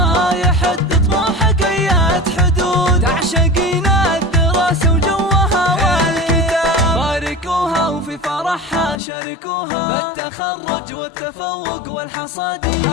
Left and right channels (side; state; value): right; drops out; at 9.0 s